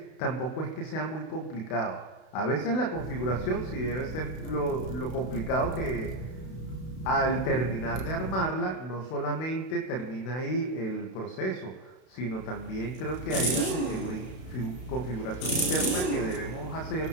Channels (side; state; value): right; late; 32 ms